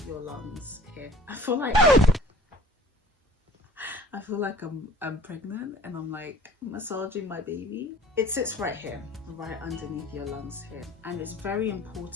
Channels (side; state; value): both; normal; correlation 0.50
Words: your lungs here. I feel like I'm pregnant and I'm like massaging my baby. It sits right here, right underneath your lungs here. And it's very